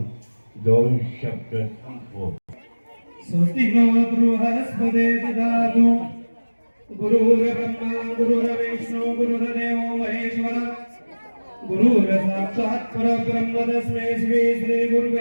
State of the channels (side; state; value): both; inverted; correlation -1.00